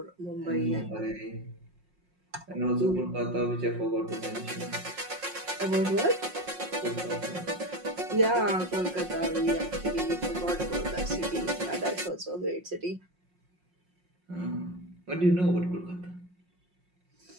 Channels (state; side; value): late; left; 5.5 ms